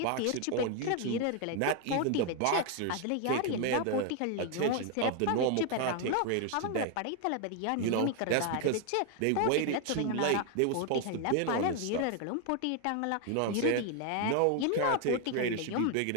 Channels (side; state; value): both; different; correlation 0.01